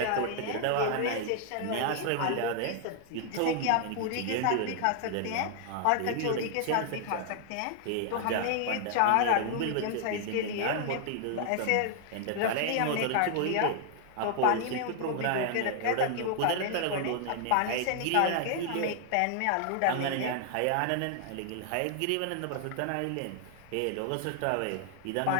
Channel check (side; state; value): both; different; correlation 0.00